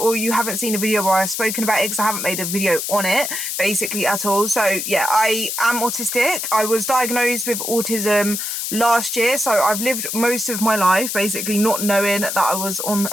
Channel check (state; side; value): noise; left; hiss, 3 dB below the sound